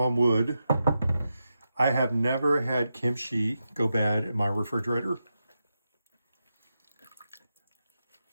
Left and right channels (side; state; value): both; inverted; correlation -0.88